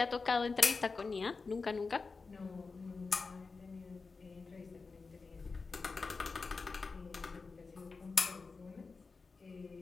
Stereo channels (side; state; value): right; quieter; 4.4 dB